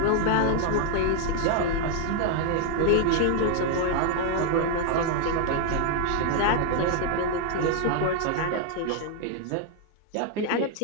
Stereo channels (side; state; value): both; different; correlation 0.00